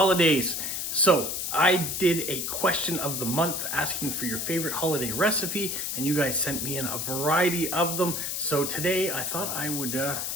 So I did a question of the month asking for your favorite holiday recipe, and you guys sent me in a variety of them. So today I thought I would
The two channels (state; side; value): noise; left; hiss, 2 dB below the sound